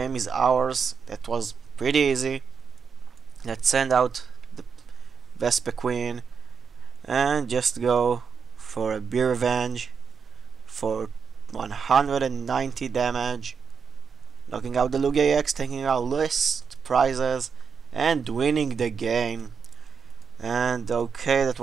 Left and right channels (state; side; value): quieter; left; 6.3 dB